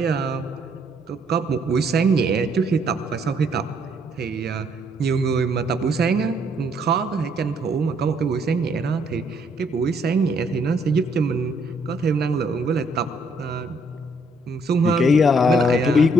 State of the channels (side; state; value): both; normal; correlation 0.68